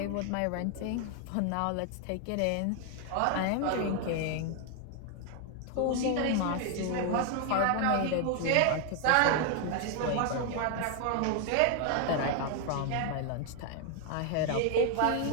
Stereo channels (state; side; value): different; both; correlation 0.01